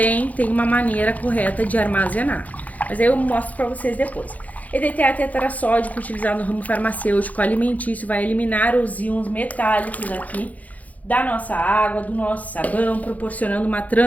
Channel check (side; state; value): right; late; 0.075 ms